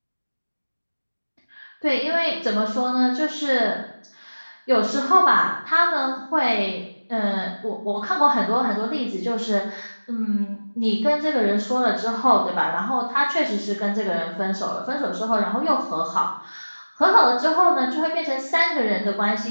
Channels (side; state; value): both; inverted; correlation -1.00